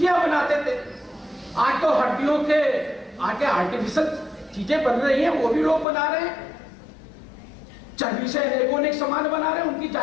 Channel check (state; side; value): drops out; right; at 5.9 s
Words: बनाते थे, आज तो हड्डियों के आगे आर्टिफिशियल चीजें बन रही हैं, वो भी लोग बना रहे हैं। चर्बी से अनेक सामान बना रहे हैं, उनकी